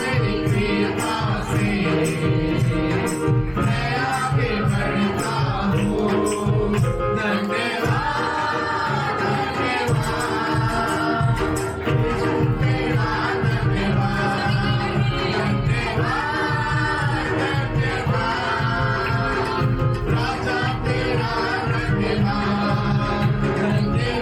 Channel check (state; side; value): identical; both; correlation 1.00